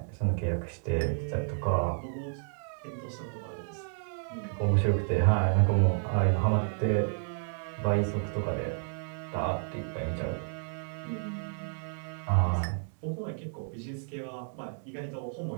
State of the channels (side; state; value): left; silent; 57 dB below the other